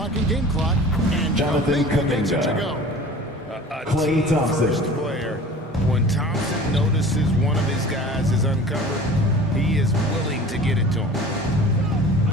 and game clock. And Jonathan gets it to Kuminga. go. A Klay team Thompson. first player. When Thompson notices one of his guys is uncovered, he is willing to get it to him.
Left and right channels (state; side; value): normal; both; correlation 0.42